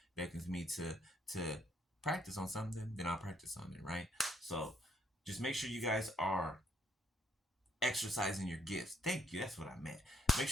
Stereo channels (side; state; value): both; normal; correlation 0.71